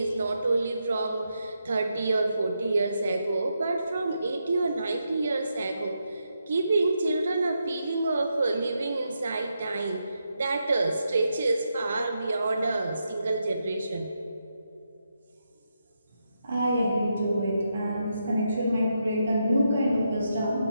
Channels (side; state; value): both; inverted; correlation -0.83